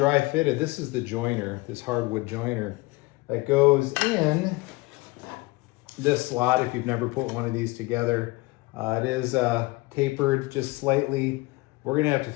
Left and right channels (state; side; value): quieter; right; 23.0 dB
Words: fitted, this is the joiner, this hardwood joiner that goes in this slot if you've never put one of these together. It is tapered just slightly. We're gonna have to